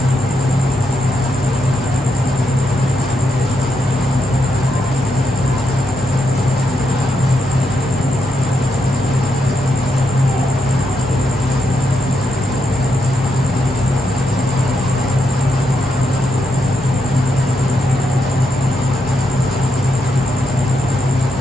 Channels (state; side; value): normal; both; correlation 0.82